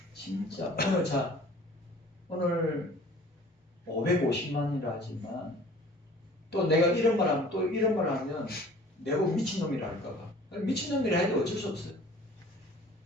진짜 오늘 550만이라 하지만 또 내가 이런 말 하면 또 이런 말 하면 내가 미친놈이라 할까봐. 미친놈이라 해도 어쩔 수 없어요.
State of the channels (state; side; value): normal; both; correlation 0.49